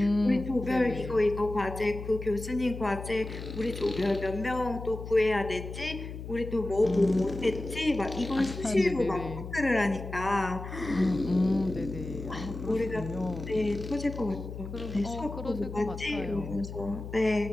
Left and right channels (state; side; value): noise; left; hum, 9 dB below the sound